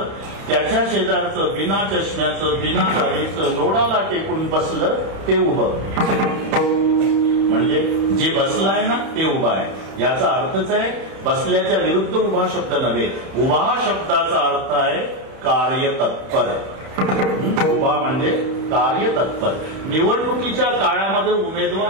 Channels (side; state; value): left; late; 31 ms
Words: त्याच्या शेजारचं बिना चष्म्याचं बिना दाढीचं लोडाला टेकून बसलं ते उभं. म्हणजे जे बसलं आहे ना ते उभा आहे. याचा अर्थच आहे बसल्याच्या विरुद्ध उभा शब्द नव्हे. उभा शब्दाचा अर्थ आहे कार्यतत्पर. उभा म्हणजे कार्यतत्पर. निवडणुकीच्या काळामध्ये